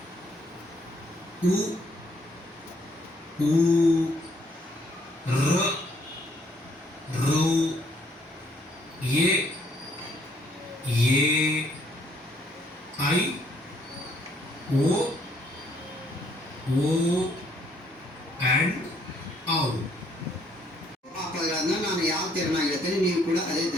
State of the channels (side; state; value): both; normal; correlation 0.66